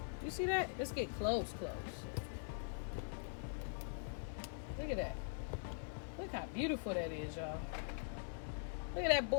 You see that? Let's get close. Look at that. Look how beautiful that is, y'all. Look at that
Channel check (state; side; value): silent; right; digital silence